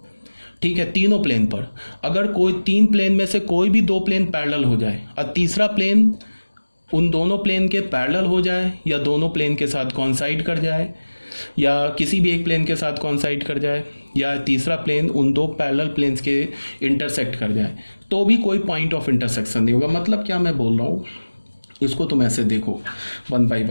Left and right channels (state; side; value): inverted; both; correlation -1.00